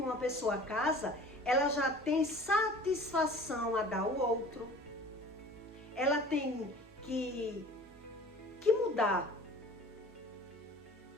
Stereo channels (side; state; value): both; normal; correlation 0.45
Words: pessoa casa, ela já tem satisfação a dar ao outro. Ela tem que mudar.